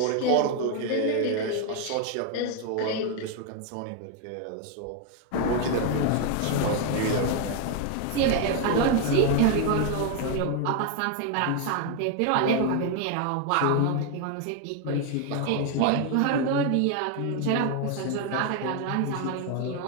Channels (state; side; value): different; both; correlation 0.01